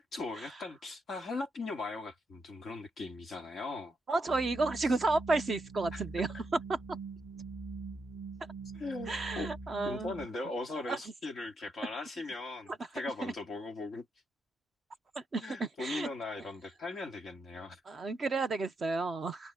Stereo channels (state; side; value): normal; both; correlation 0.81